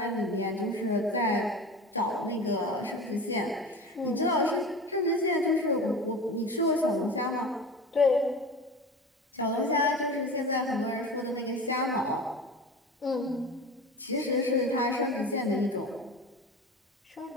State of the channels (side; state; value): both; normal; correlation 0.33